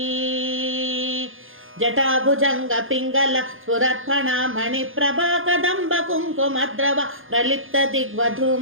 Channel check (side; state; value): left; late; 0.59 ms